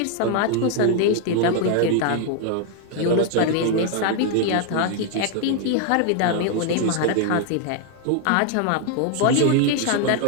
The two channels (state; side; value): different; both; correlation 0.01